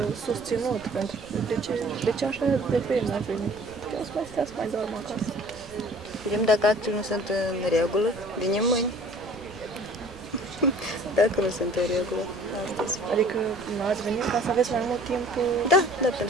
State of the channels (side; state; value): right; noise; rumble, 23 dB below the sound